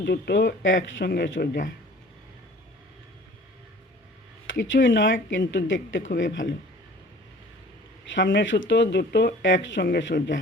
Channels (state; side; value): normal; both; correlation 0.48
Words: দুটো একসঙ্গে সোজা। কিছুই নয়, কিন্তু দেখতে খুবই ভালো। সামনে সুতো দুটো একসঙ্গে সোজা,